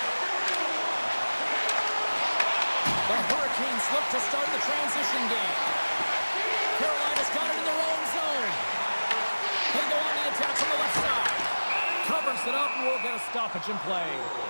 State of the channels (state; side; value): inverted; both; correlation -1.00